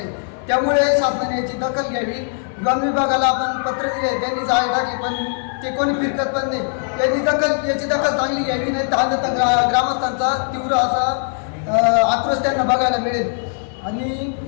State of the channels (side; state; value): right; silent; 66 dB below the other